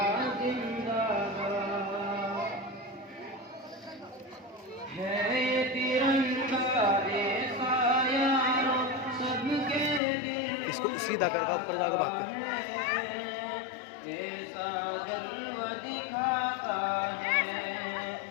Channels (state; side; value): drops out; right; at 10.0 s